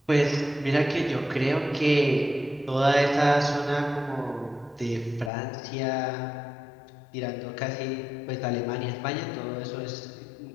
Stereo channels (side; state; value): right; drops out; at 5.3 s